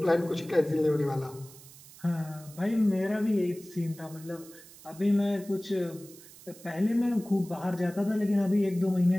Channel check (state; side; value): noise; right; hiss, 20 dB below the sound